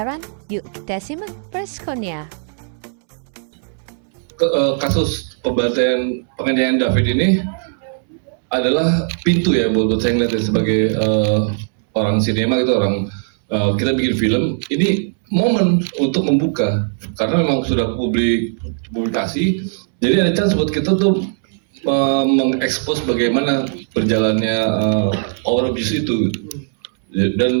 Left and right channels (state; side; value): silent; left; 67 dB below the other